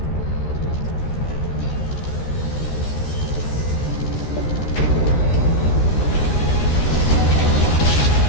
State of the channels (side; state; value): right; late; 13 ms